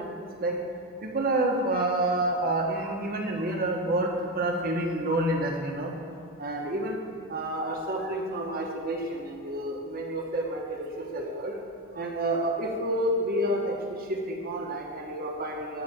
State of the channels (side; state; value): both; normal; correlation 0.15